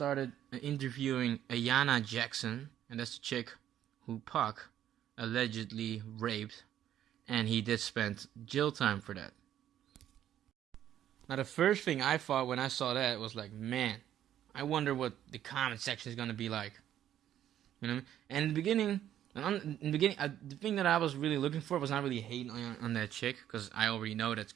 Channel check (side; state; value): left; quieter; 11.2 dB